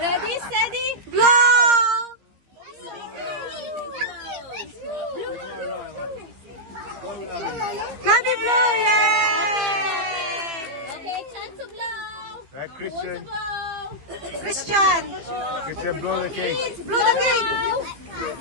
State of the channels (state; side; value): late; left; 15 ms